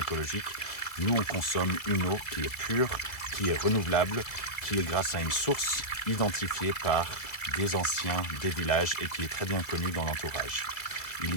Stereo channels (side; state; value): right; late; 1.8 ms